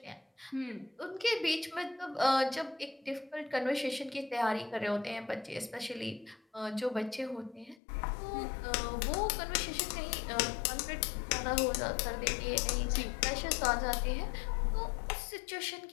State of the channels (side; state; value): right; drops out; at 7.8 s